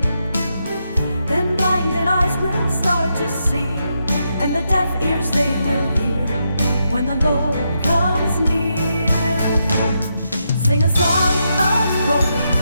Then blinded eyes will start to see, and the deaf ears they will hear when the Lord comes near. Sing a song of glory,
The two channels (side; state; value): both; inverted; correlation -0.83